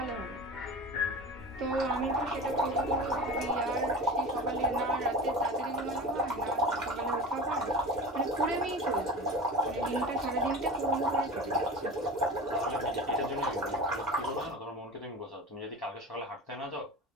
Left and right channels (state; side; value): normal; both; correlation 0.32